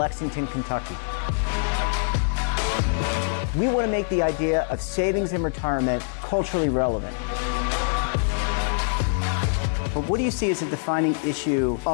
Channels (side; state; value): right; silent; digital silence